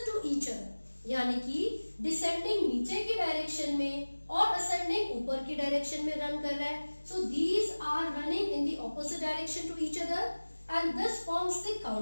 to each other, यानी कि डिसेंडिंग नीचे की direction में और ascending ऊपर की direction में run कर रहा है. So these are running in the opposite direction to each other and this forms the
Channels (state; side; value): inverted; both; correlation -1.00